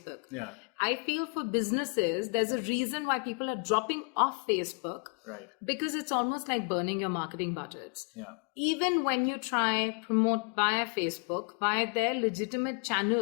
Yeah. I feel for businesses, there's a reason why people are dropping off Facebook. Right. Because it's almost like burning your marketing budgets. Yeah. Even when you try promote via Facebook, via their legitimate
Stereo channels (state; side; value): quieter; right; 38.8 dB